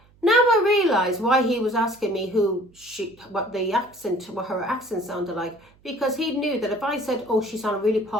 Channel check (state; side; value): noise; right; hum, 30 dB below the sound